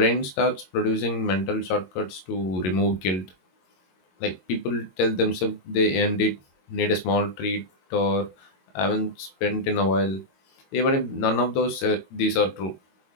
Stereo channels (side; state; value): right; late; 22 ms